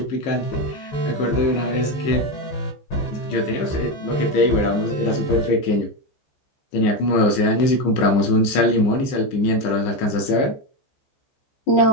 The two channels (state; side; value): late; right; 15 ms